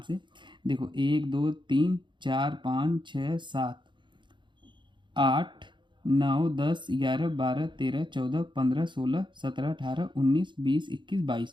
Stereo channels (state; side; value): late; left; 0.23 ms